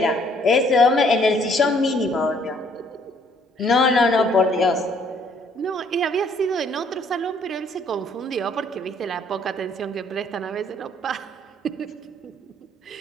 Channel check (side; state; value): both; normal; correlation 0.63